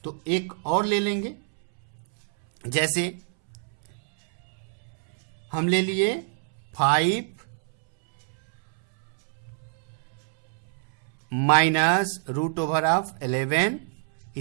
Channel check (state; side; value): silent; left; 60 dB below the other